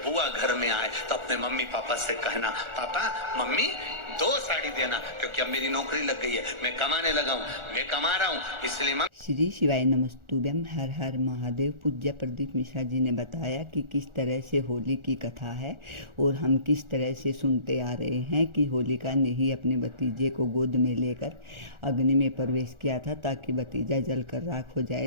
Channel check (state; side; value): late; left; 1.4 ms